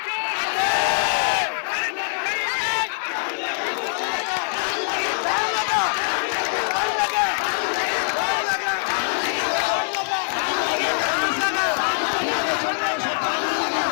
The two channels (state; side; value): silent; right; digital silence